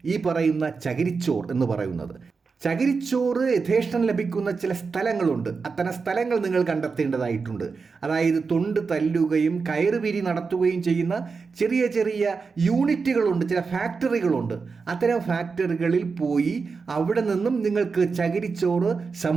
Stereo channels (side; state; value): left; quieter; 4.9 dB